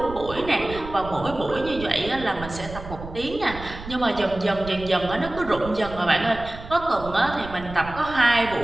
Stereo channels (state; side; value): noise; right; rumble, 13 dB below the sound